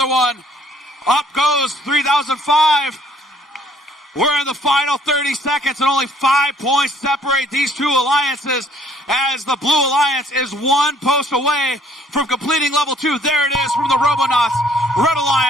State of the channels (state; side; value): normal; both; correlation 0.61